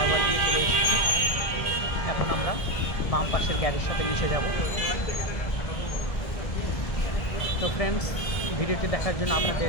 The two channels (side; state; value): right; late; 1.6 ms